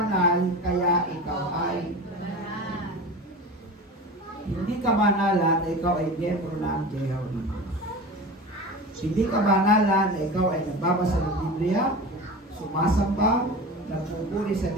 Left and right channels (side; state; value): both; normal; correlation 0.32